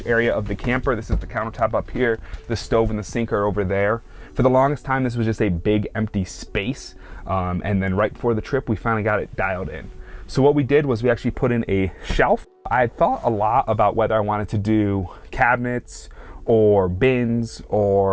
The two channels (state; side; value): identical; both; correlation 1.00